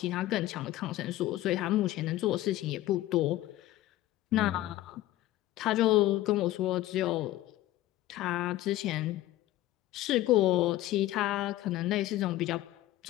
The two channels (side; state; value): right; quieter; 15.3 dB